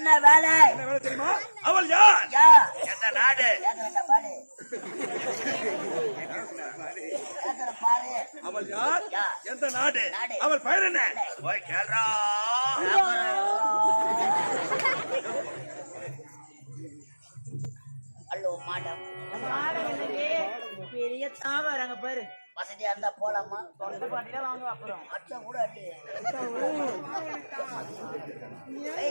வேலை? என்ன வேலை தெரியுமா? அவள் யார்? எந்த நாடு? அவள் யார்? எந்த நாடு? அவள் பெயர் என்ன? போய் கேள்றா. Hello madam. பெரிய தாவறாங்க பாரு. வசதியா இருந்தா போலாமா? தொண்டை பாட்டில வாங்க அப்புறம் அச்சா கூட அடி.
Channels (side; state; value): both; inverted; correlation -1.00